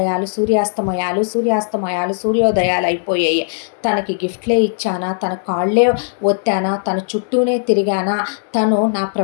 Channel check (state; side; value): silent; right; digital silence